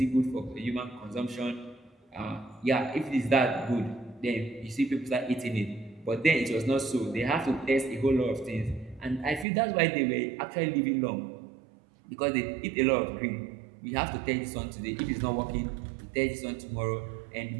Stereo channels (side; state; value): left; drops out; at 9.5 s